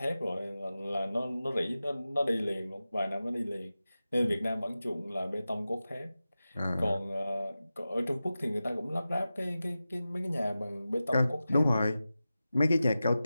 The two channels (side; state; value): both; inverted; correlation -0.94